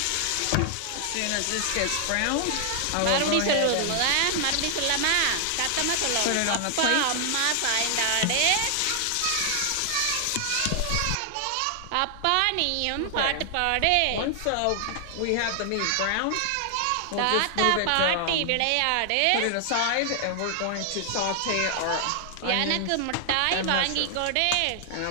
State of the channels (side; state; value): both; different; correlation 0.00